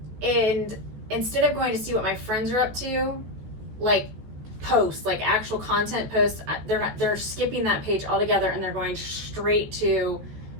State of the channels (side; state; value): left; late; 14 ms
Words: instead of going to see what my friends are up to, like posts, like actual content posts, they're skipping that page altogether and they're going straight to